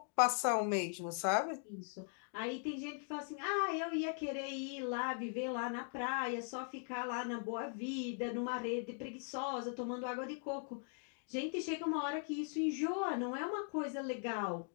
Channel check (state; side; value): silent; right; 51 dB below the other